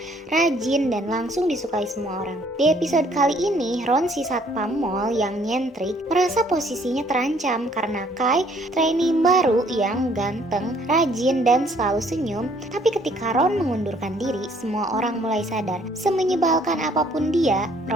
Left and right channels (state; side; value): normal; both; correlation 0.62